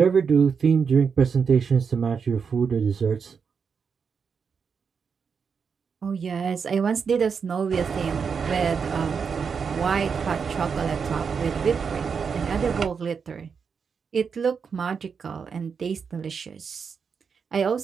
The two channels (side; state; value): left; quieter; 6.1 dB